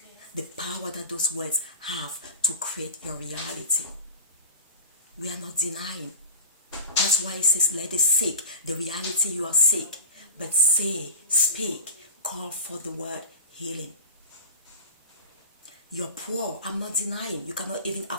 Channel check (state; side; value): inverted; both; correlation -0.31